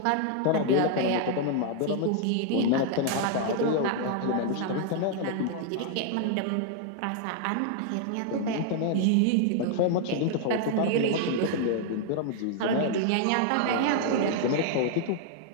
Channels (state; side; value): different; both; correlation 0.00